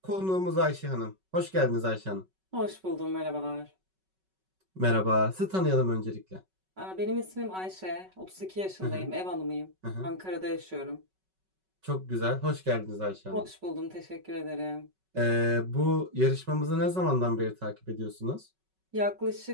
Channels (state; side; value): late; left; 5.3 ms